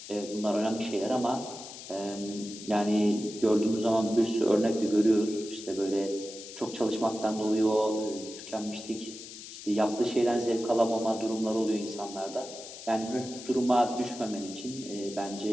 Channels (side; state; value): left; noise; hiss, 13 dB below the sound